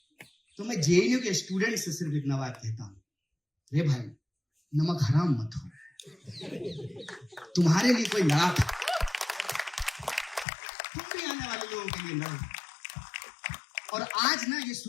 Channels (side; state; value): right; drops out; at 10.5 s